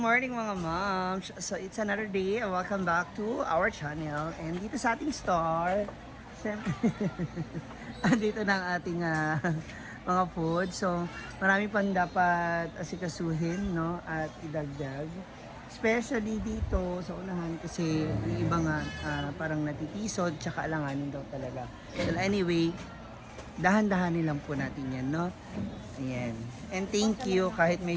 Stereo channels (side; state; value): both; identical; correlation 1.00